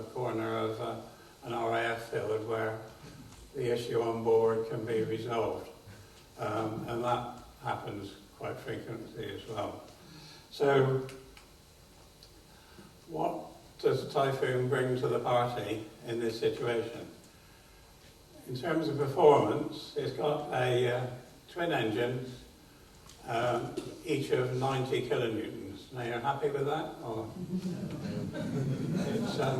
corner of an RAF field where the issue on board can be resolved, and that happens quite frequently as well. So what does Typhoon bring to the party in this situation? In terms of performance, it's got a twin engines, each of 90 kilonewtons. Now, you're happy with that? Or it's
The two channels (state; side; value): identical; both; correlation 1.00